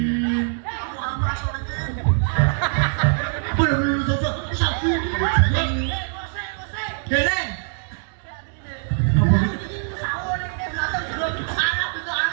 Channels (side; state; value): left; silent; digital silence